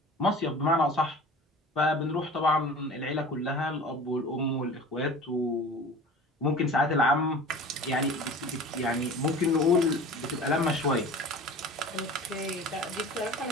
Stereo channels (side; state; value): both; normal; correlation 0.39